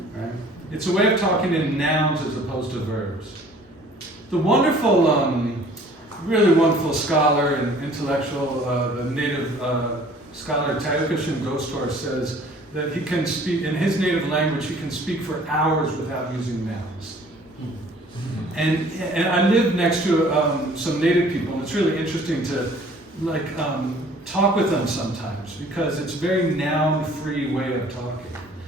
It's a way of talking in nouns as opposed to verbs. The wonderful, really wonderful scholar and intellectual, the native scholar Tayukashin Gostor says that he can speak, in his native language, he can speak for hours without using nouns. And I live next to some native people, and it's really interesting to talk with them sometimes because it's a very noun-free way of talking.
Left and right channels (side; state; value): both; normal; correlation 0.53